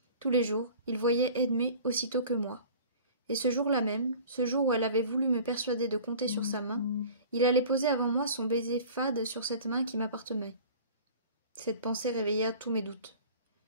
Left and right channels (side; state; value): both; inverted; correlation -0.44